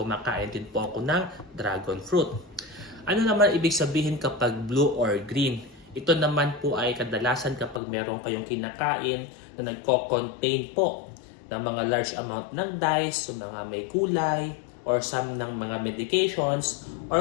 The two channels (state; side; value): drops out; right; at 7.8 s